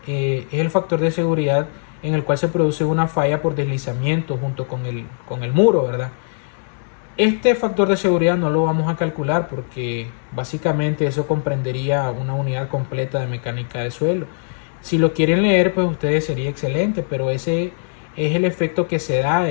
es el factor de seguridad en el cual se produce una falla por deslizamiento junto con el muro, ¿verdad? Este factor de seguridad no lo vamos a calcular porque básicamente eso comprendería una unidad completa de mecánica de suelo. Si lo quieren leer, pues ustedes sería excelente, pero ese es el efecto que se da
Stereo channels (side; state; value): right; silent; digital silence